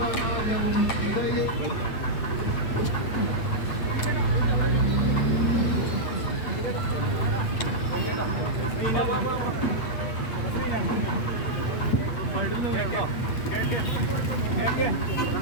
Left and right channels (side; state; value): right; late; 8.5 ms